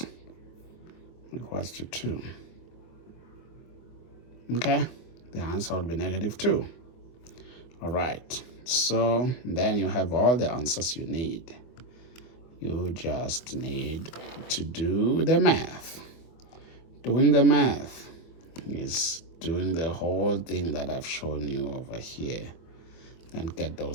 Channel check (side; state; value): right; late; 24 ms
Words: equals to 2. Okay, the answer would be negative 2. All right, so then you have all the answers you need. You just need to do the math. Doing the math is doing the whole thing that I've shown you over here and get